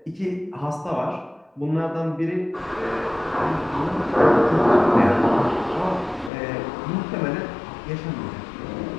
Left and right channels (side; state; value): right; drops out; at 6.3 s